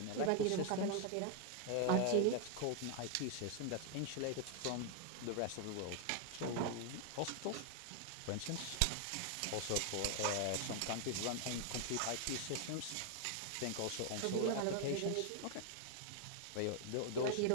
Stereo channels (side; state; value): both; different; correlation 0.00